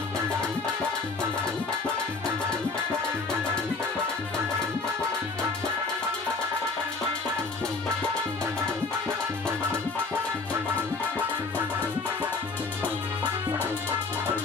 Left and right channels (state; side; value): quieter; right; 4.0 dB